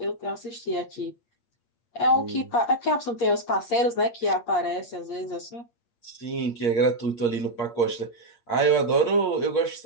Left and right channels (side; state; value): right; late; 8.6 ms